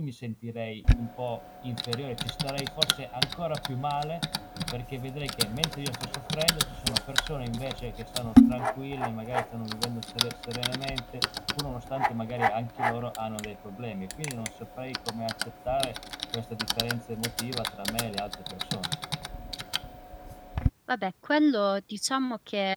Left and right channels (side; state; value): both; identical; correlation 1.00